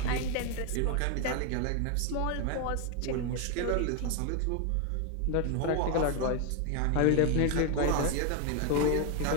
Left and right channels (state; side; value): different; both; correlation 0.01